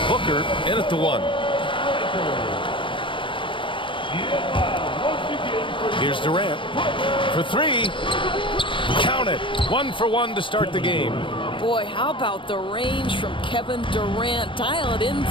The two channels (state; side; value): late; right; 0.24 ms